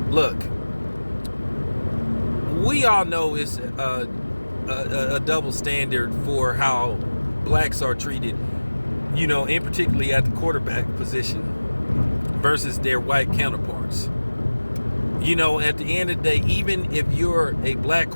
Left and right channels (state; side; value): inverted; both; correlation -1.00